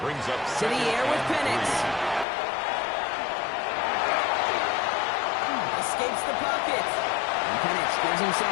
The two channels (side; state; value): right; drops out; at 2.2 s